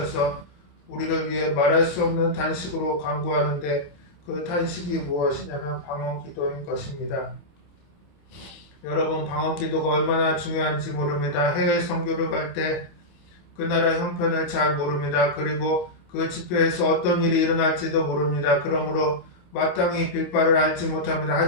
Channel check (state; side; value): late; right; 27 ms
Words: 우리를 위해 말할 수 없는 탄식으로 간구하는데 그 탄식이 무엇이냐면 방언기도인 것입니다. 여러분, 방언기도가 얼마나 중요한지 모릅니다. 해외 선교를 갈 때 그 나라 형편을 잘 모릅니다. 그리고 그 집회에서 어떤 일이 일어날지도 모릅니다. 그러므로 마땅히 빌 바를 알지 못합니다.